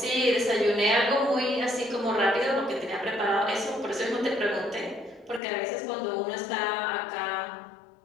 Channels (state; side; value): drops out; right; at 5.4 s